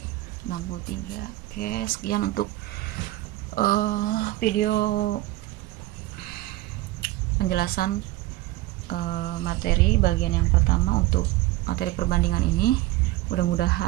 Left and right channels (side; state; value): left; quieter; 17.1 dB